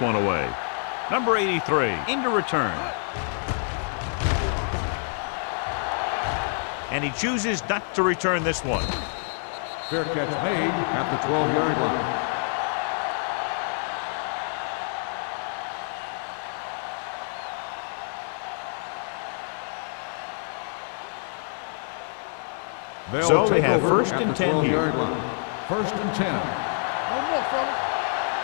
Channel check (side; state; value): right; silent; 60 dB below the other